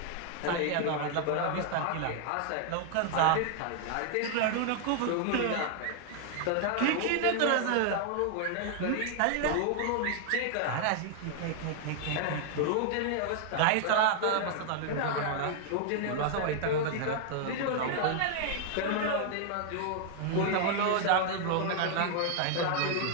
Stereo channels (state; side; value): different; both; correlation 0.00